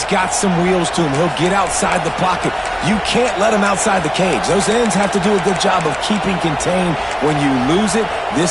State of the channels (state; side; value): identical; both; correlation 1.00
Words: got some wheels to him. He'll get outside the pocket. You can't let him outside the cage. Those ends have to do a good job of keeping contained. When you lose it,